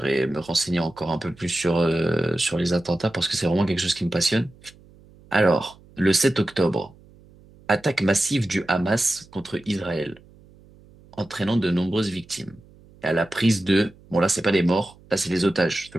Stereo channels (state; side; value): noise; right; hum, 26 dB below the sound